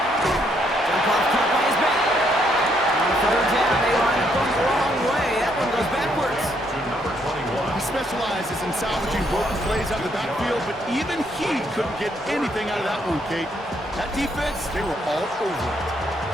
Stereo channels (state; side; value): normal; both; correlation 0.72